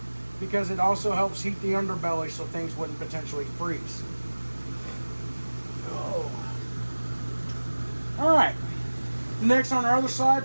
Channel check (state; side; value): inverted; both; correlation -1.00